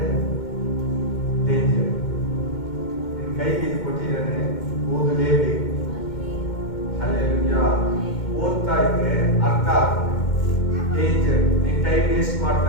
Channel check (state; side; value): late; right; 2.2 ms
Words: ಡೇಂಜರ್. ನಿನ್ನ ಕೈಗೆ ಇದು ಕೊಟ್ಟಿದ್ದಾನೆ, ಓದಲೇಬೇಕು. ಹಲ್ಲೆಲೂಯಾ. ಓದ್ತಾ ಇದ್ರೆ ಅರ್ಥ ಆಗುತ್ತೆ. ಡೇಂಜರ್. ನೀನ್ ಟೈಮ್ ವೇಸ್ಟ್ ಮಾಡ್ತಾ